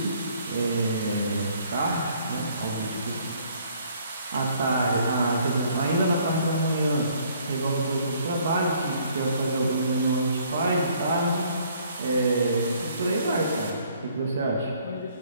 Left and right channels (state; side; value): inverted; both; correlation -0.62